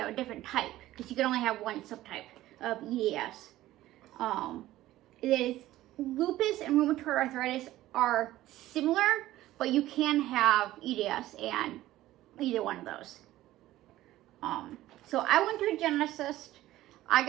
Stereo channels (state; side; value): quieter; left; 15.4 dB